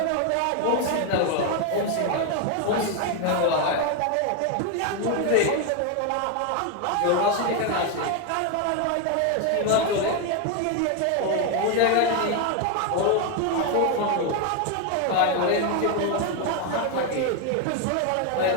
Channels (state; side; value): different; both; correlation 0.01